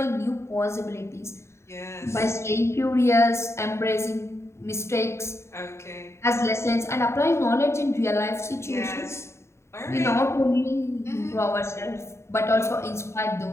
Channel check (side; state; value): right; late; 0.13 ms